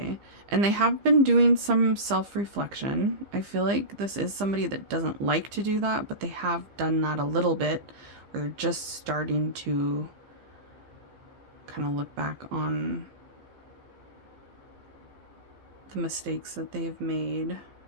and they have been doing some self-reflection. I feel like this is somebody that doesn't like to do that, but they have done that a little bit, where they're just starting to kind of look back on the mistakes that they've made.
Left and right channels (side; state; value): left; late; 15 ms